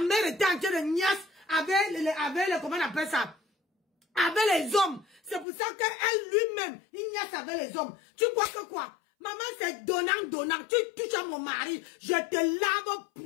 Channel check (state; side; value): drops out; right; at 5.5 s